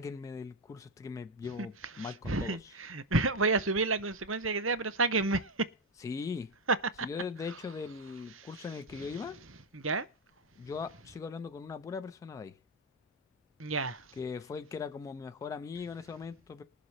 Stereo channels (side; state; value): both; normal; correlation 0.08